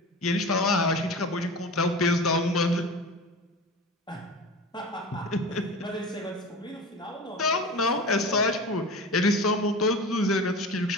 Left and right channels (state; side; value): normal; both; correlation 0.32